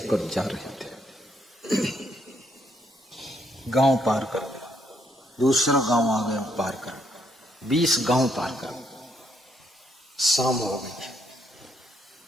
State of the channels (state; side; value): normal; both; correlation 0.73